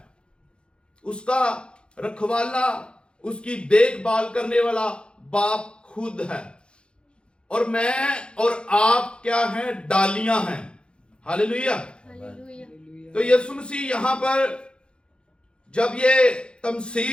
उसका रखवाला, उसकी देखभाल करने वाला बाप खुद है, और मैं और आप क्या हैं? डालियां हैं। हालेलुया। तो यीशु मसीह यहां पर जब ये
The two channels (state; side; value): late; right; 0.054 ms